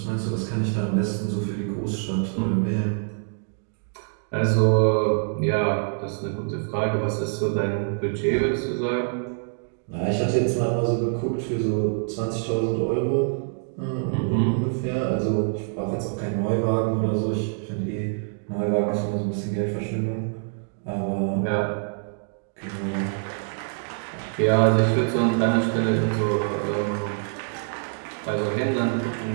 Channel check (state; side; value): silent; left; 62 dB below the other